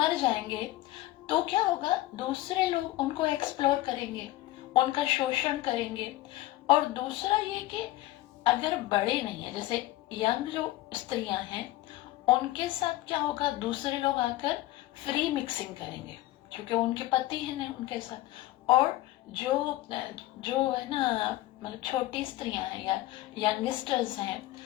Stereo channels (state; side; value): quieter; right; 16.6 dB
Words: जाएंगे, तो क्या होगा, दूसरे लोग उनको एक्सप्लोर करेंगे, उनका शोषण करेंगे। और दूसरा ये कि अगर बड़े नहीं है, जैसे यंग जो स्त्रियां हैं, उनके साथ क्या होगा, दूसरे लोग आकर फ्री मिक्सिंग करेंगे, क्योंकि उनके पति है नहीं उनके साथ। और जो जो है ना, मतलब छोटी स्त्रियां हैं या यंगस्टर्स हैं,